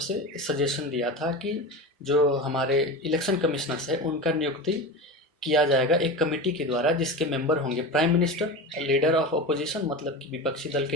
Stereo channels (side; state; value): both; normal; correlation 0.26